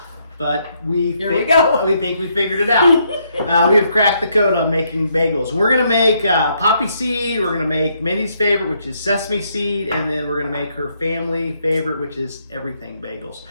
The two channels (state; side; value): inverted; both; correlation -0.74